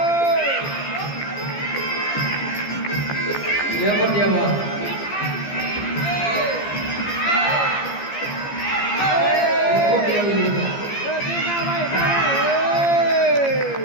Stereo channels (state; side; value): late; right; 15 ms